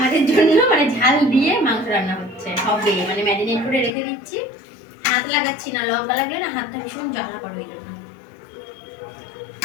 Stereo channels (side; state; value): right; drops out; at 3.9 s